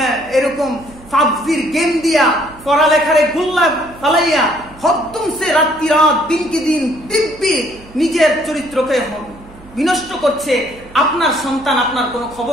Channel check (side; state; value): right; noise; hum, 22 dB below the sound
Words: এরকম পাবজির গেম দিয়া পড়ালেখারে গুল্লা ফালাইয়া হদ্দুম সে রাত্রি রাত, দিনকে দিন দিব্যি নিজের চরিত্রকে বিনষ্ট করছে। আপনার সন্তান, আপনার কোনো